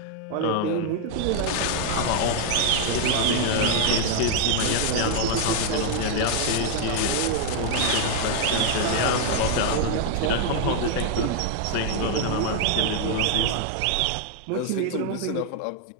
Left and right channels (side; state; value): both; different; correlation 0.00